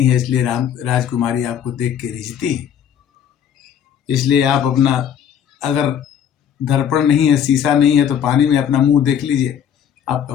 है, इसलिए राजकुमारी आपको देख के रिझती है, इसलिए आप अपना, अगर दर्पण नहीं है, शीशा नहीं है, तो पानी में अपना मुंह देख लीजिए,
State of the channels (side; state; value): right; quieter; 8.9 dB